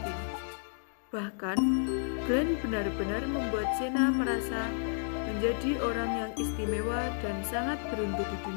Bahkan, Glenn benar-benar membuat Sena merasa menjadi orang yang istimewa dan sangat beruntung di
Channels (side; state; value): right; silent; digital silence